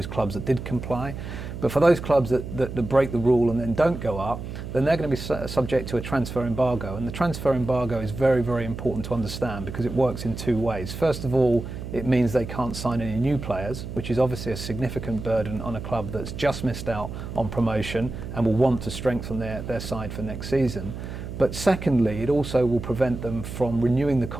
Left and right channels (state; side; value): noise; right; hum, 8 dB below the sound